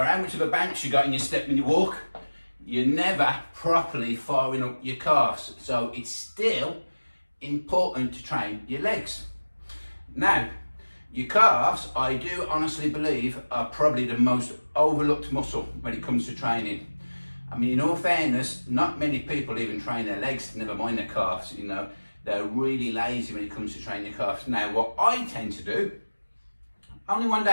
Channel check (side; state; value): both; inverted; correlation -1.00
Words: how much of a bounce you got in your step when you walk, you're never properly firing up your calves. So it's still important to train your legs. Now, your calves, I do honestly believe, are probably the most overlooked muscle when it comes to training. I mean, in all fairness, not many people even train their legs, never mind their calves, you know. They're really lazy when it comes to training your calves. Now, what I tend to do, only 1